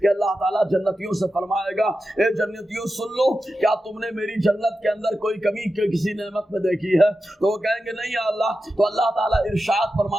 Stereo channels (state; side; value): normal; both; correlation 0.91